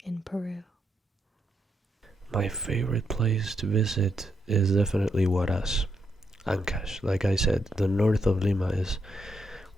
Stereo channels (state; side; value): normal; both; correlation 0.80